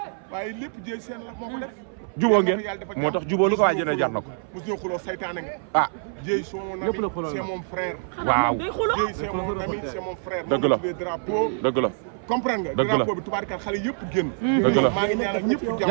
waaye lépp jéy seen la moo ko def jubóo ngeen moo tax jubóo lu ko waay jëlee jar na ko mos ñoo xuloo saytaane nga ah jéy c'est mon ami c'est mon frère waaw jéy c'est mon ami c'est mon frère dëgg la tuddee drapeau dëgg la comprendre nga drapeau bi tubaarikàlla xale yëpp génn maa ngi ñaanal ñëpp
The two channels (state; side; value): silent; left; 59 dB below the other